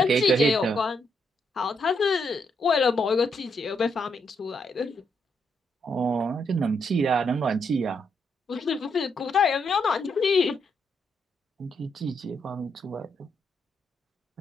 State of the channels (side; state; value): both; normal; correlation 0.78